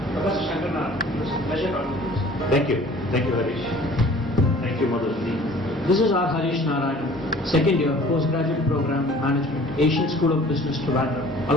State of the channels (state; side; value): normal; both; correlation 0.49